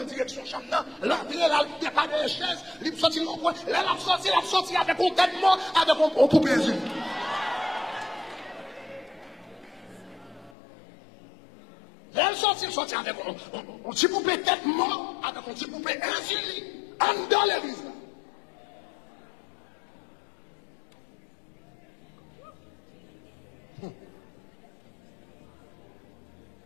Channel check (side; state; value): right; drops out; at 10.5 s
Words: direction chambre, non. L'entrée, là, il n'y a pas de chaise, il sorti au point. Là, il a sorti avec un tellement, avec un poupée yeux. Là, il sorti avec un petit poupée tête mort, avec un petit poupée insuline, en dans l'église, là.